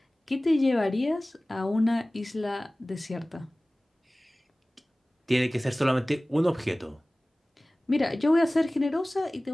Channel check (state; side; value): normal; both; correlation 0.98